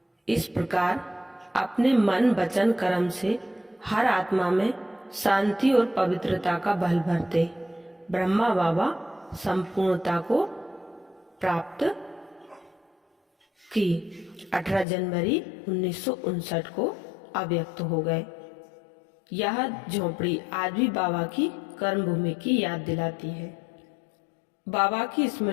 इस प्रकार अपने मन, वचन, कर्म से हर आत्मा में शांति और पवित्रता का बल भरते ब्रह्मा बाबा संपूर्णता को प्राप्त की 18 जनवरी 1959 को अव्यक्त हो गए। यह झोपड़ी आज भी बाबा की कर्म भूमि की याद दिलाती है। बाबा की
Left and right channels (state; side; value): drops out; right; at 14.9 s